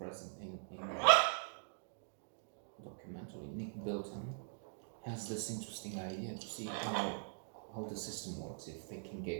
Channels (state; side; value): silent; left; digital silence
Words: in the documentary, Nick Bilton, has this interesting idea to see how the system works, if they can